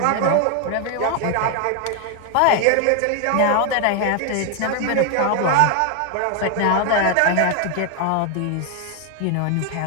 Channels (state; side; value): different; both; correlation 0.01